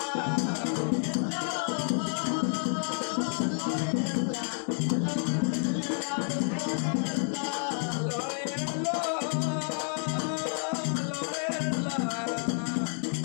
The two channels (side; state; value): right; silent; 58 dB below the other